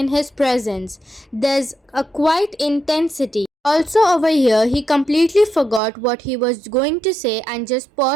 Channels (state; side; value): drops out; left; at 5.8 s